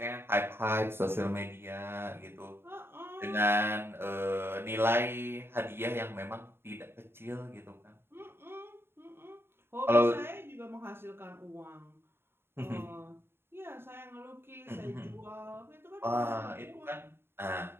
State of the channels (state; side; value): late; left; 0.11 ms